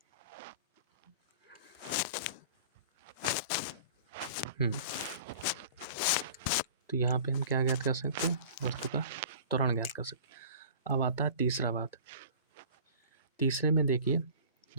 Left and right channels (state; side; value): inverted; both; correlation -0.43